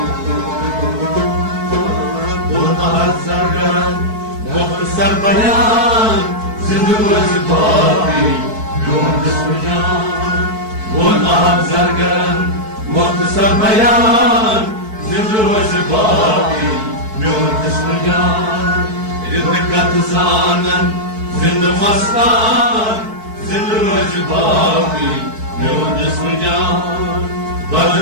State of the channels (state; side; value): late; left; 4.6 ms